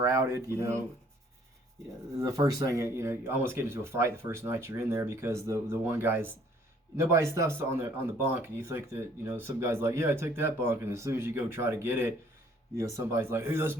The first thing, you almost get into a fight the first night you're in there because the one guy's. Nobody's stuff's on the bunk, and you think that some guy's like, yeah, I took that bunk, and as soon as you go try to get it, somebody's like, hey, that's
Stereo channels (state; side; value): normal; both; correlation 0.60